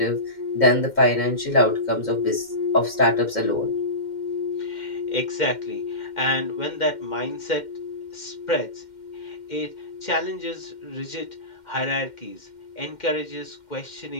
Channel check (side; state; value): right; late; 2.1 ms